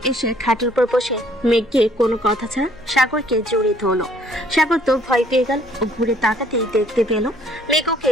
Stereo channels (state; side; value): noise; left; hum, 26 dB below the sound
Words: এসে খাটের উপর বসে মেঘকে কোনো কথা ছাড়া সাগরকে জড়িয়ে ধরলো। সাগর তো ভয় পেয়ে গেল ও ঘুরে তাকাতেই দেখতে পেল মেঘ ওকে